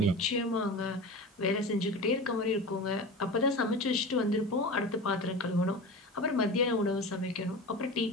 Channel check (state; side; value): normal; both; correlation 0.31